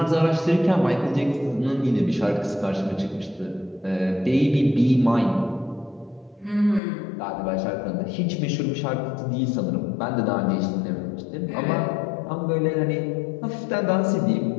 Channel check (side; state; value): right; drops out; at 6.8 s